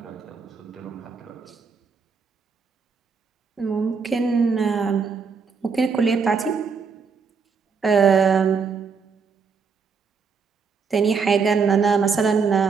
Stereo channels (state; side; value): quieter; left; 5.5 dB